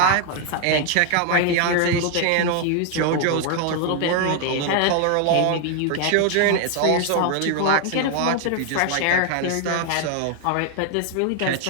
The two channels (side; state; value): both; different; correlation 0.01